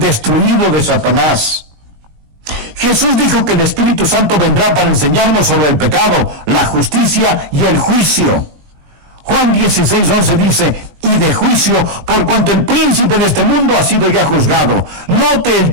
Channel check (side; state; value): left; late; 20 ms